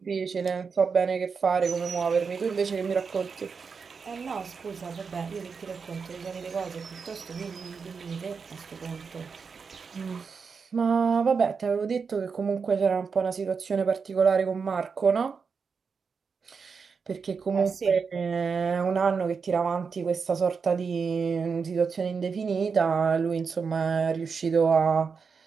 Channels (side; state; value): left; quieter; 5.5 dB